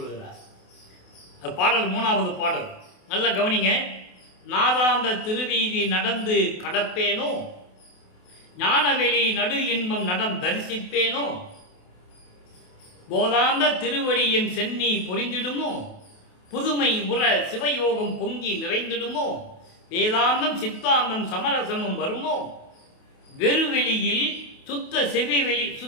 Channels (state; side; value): late; right; 28 ms